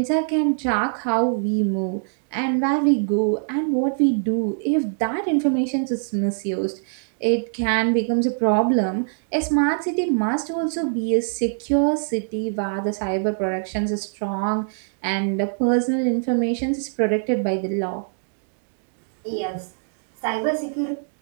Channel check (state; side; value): silent; left; digital silence